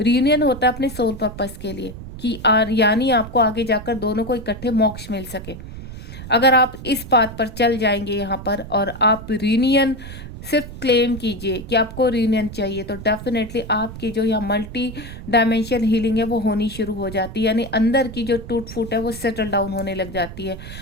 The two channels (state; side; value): noise; right; rumble, 12 dB below the sound